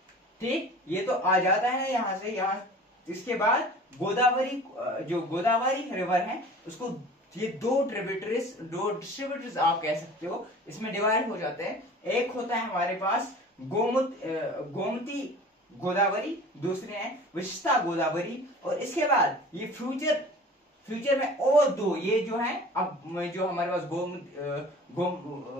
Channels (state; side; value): normal; both; correlation 0.43